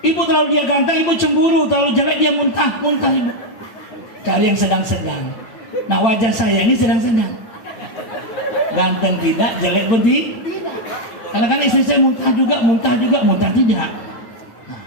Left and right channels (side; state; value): right; late; 8.8 ms